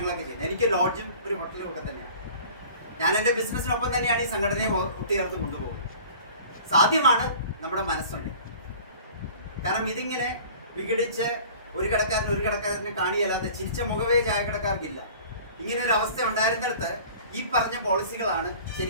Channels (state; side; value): inverted; both; correlation -0.45